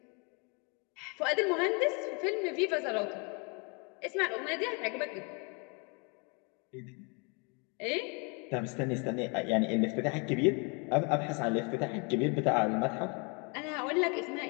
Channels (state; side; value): quieter; right; 33.2 dB